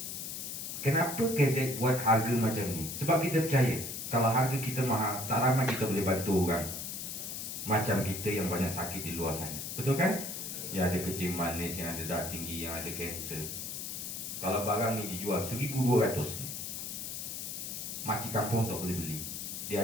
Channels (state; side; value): noise; left; hiss, 6 dB below the sound